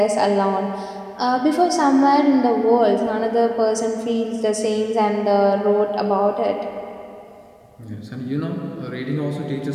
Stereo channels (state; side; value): identical; both; correlation 1.00